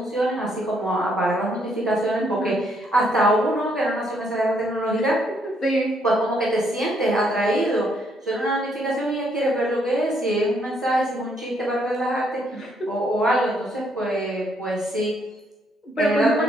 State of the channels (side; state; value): both; normal; correlation 0.71